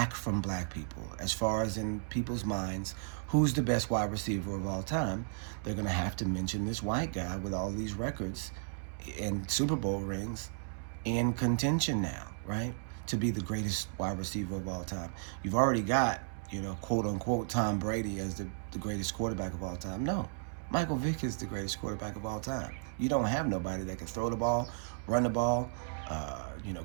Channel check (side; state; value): left; silent; digital silence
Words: from black people. As far as in people's minds, who's the best wide receiver of all time? They're going to have to mention this white guy with all these records and Super Bowl rings in contention now, right? To be the greatest wide receiver of all time. You've already got, quote unquote, Tom Brady as the greatest quarterback of all time. No, Michael Vick is the greatest quarterback of all time. You don't have nobody that can throw the ball, run the ball,